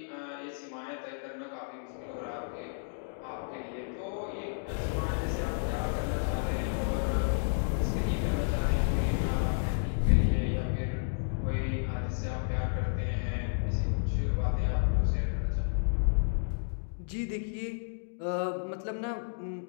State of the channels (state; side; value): silent; right; digital silence